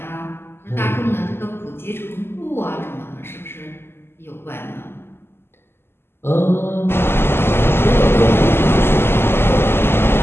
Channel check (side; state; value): right; late; 0.11 ms